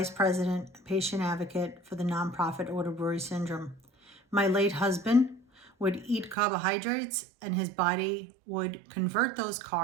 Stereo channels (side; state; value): left; drops out; at 6.4 s